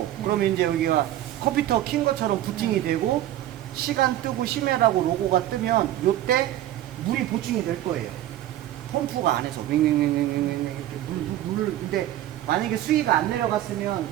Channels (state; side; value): quieter; left; 13.4 dB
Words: 그러면 이제 여기가 컴퓨터 킨 것처럼 부팅이 되고 시간 뜨고 심해라고 로고가 뜨면 요때 물이 보충이 될 거예요. 펌프가 안에서 윙윙윙윙윙 이렇게 물을. 근데 만약에 수위가 안 내려갔으면